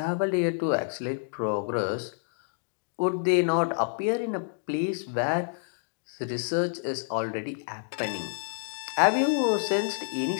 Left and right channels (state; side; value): silent; right; digital silence